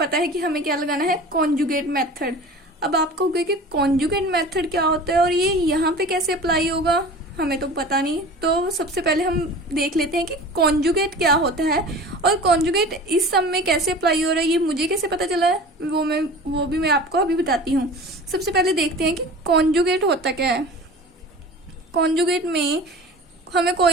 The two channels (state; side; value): normal; both; correlation 0.39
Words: है कि हमें क्या लगाना है, कॉन्जुगेट मेथड। अब आप कहोगे कि कॉन्जुगेट मेथड क्या होता है और ये यहाँ पे कैसे अप्लाई होगा, हमें तो पता नहीं। तो सबसे पहले हम देख लेते हैं कि कॉन्जुगेट क्या होता है और कॉन्जुगेट इस सम में कैसे अप्लाई हो रहा है, ये मुझे कैसे पता चला है वो भी मैं आपको अभी बताती हूँ। सबसे पहले देखते हैं कि कॉन्जुगेट होता क्या है। कॉन्जुगेट में हमें